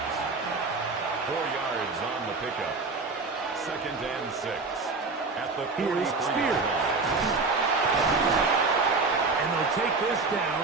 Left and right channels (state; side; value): quieter; left; 4.0 dB